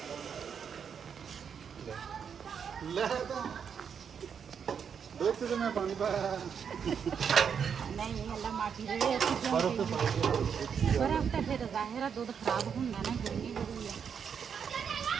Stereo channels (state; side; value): quieter; left; 7.1 dB